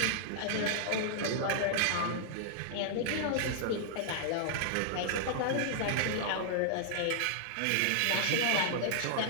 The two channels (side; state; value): both; different; correlation -0.01